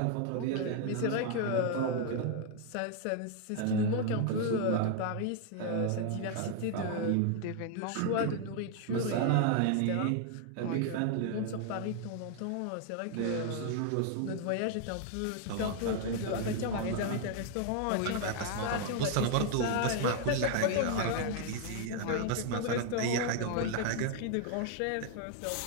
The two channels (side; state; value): both; different; correlation 0.00